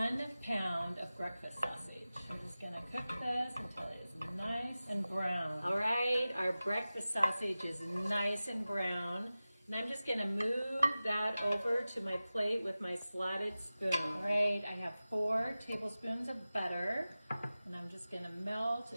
pound of breakfast sausage. I'm just gonna cook this until it is nice and brown. All right, our breakfast sausage is nice and brown. And I'm just gonna move that over to my plate with my slotted spoon. All right, I have 4 tablespoons of butter, and I'm just gonna melt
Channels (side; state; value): both; inverted; correlation -0.96